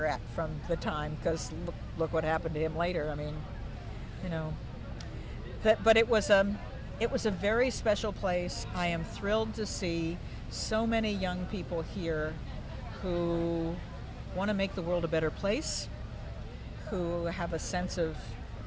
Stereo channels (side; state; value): both; identical; correlation 1.00